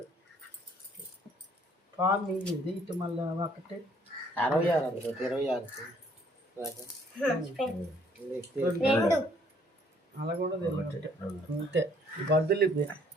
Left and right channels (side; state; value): both; normal; correlation 0.62